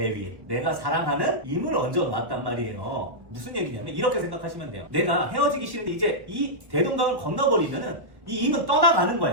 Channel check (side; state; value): left; late; 1.1 ms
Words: 위에? 내가 사랑하는 임을 얹어 놓았단 말이에요. 무슨 얘기냐면 이렇게 생각하시면 돼요. 내가 헤어지기 싫은데 이제 이 대동강을 건너버리면은 이 임은 떠나가는